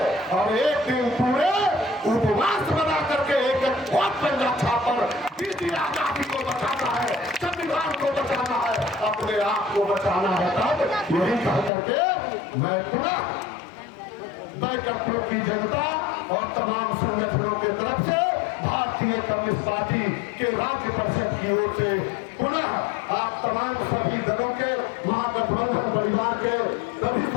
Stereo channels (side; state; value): right; drops out; at 11.7 s